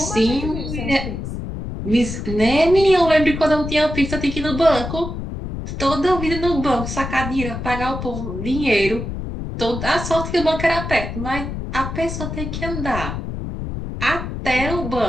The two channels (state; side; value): noise; left; rumble, 6 dB below the sound